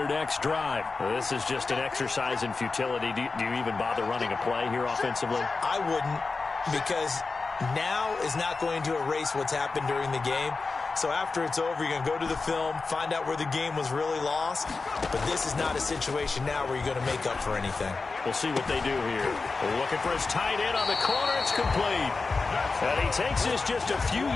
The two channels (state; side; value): quieter; right; 4.1 dB